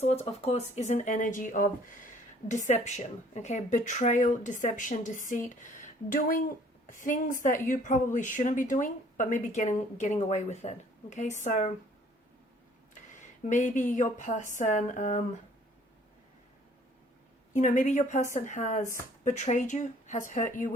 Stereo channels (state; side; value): normal; both; correlation 0.57